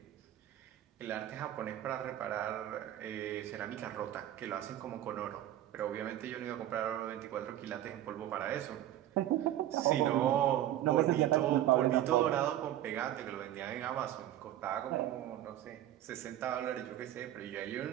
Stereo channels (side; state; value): left; quieter; 12.7 dB